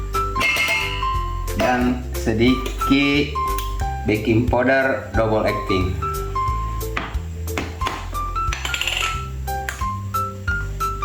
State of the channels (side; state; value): both; identical; correlation 1.00